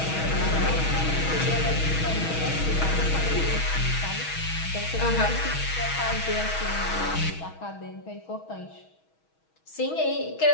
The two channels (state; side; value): late; right; 6.2 ms